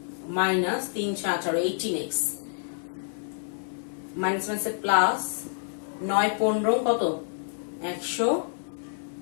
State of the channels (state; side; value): silent; right; digital silence